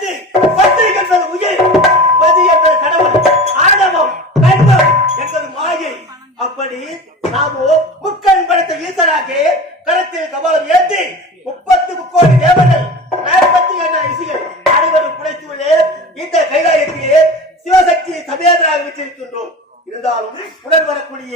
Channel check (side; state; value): both; normal; correlation 0.34